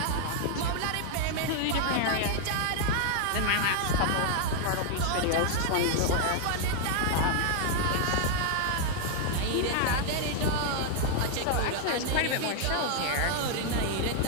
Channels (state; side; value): different; both; correlation 0.00